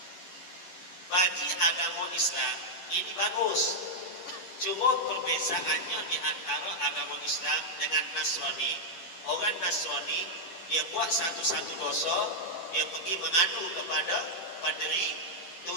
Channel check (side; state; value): right; late; 11 ms